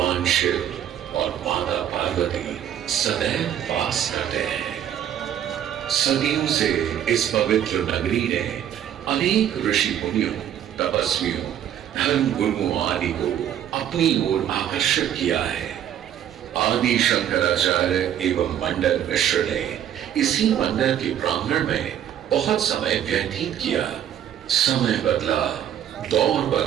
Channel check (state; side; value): quieter; left; 10.3 dB